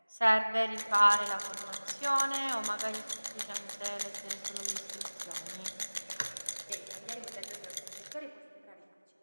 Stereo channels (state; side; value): inverted; both; correlation -1.00